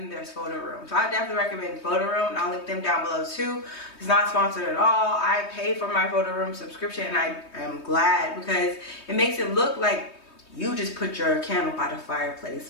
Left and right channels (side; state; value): right; late; 3.2 ms